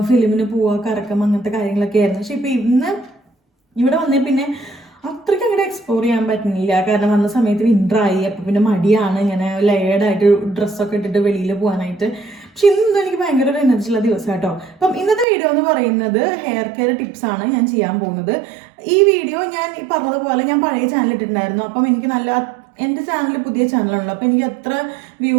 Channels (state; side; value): drops out; left; at 15.2 s